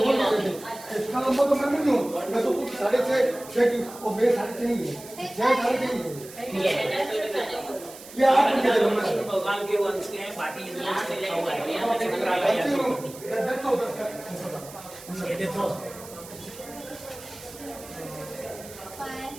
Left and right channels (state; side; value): noise; right; hiss, 17 dB below the sound